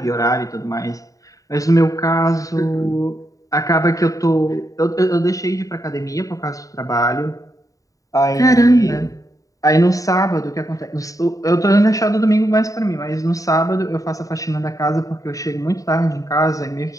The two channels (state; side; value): late; right; 0.16 ms